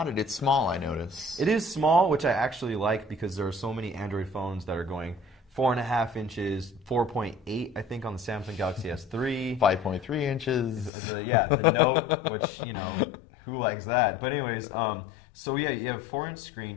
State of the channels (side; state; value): right; drops out; at 10.9 s